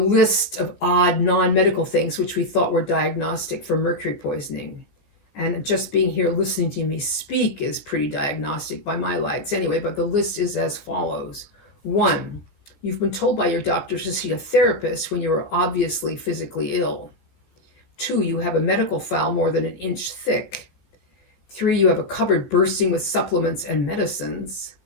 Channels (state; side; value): late; right; 15 ms